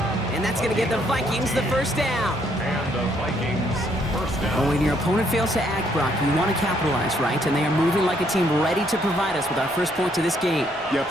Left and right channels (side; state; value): both; normal; correlation 0.70